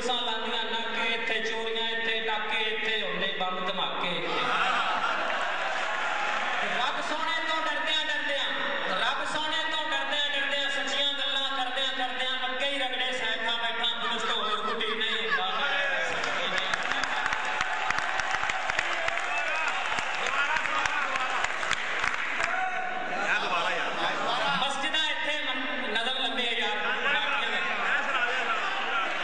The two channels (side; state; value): both; identical; correlation 1.00